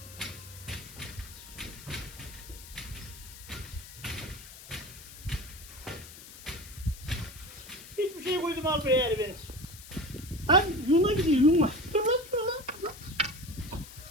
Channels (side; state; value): left; noise; hiss, 16 dB below the sound